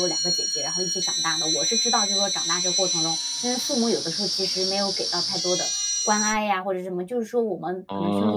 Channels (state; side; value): identical; both; correlation 1.00